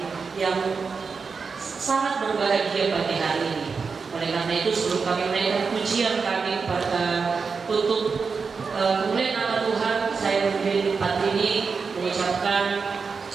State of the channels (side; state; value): left; quieter; 5.1 dB